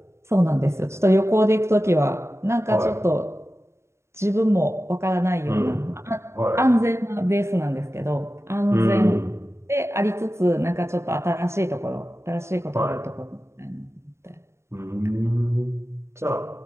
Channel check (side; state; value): left; late; 0.13 ms